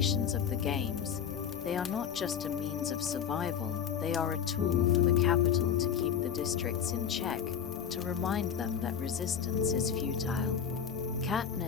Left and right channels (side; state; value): right; quieter; 7.9 dB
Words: of the games. They are not just a means of survival, they are a tool for the Capitol to keep the districts in check, to remind them that resistance is futile.